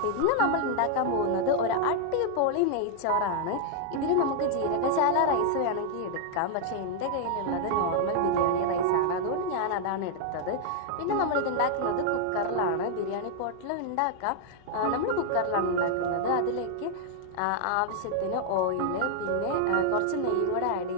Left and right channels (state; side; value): different; both; correlation -0.01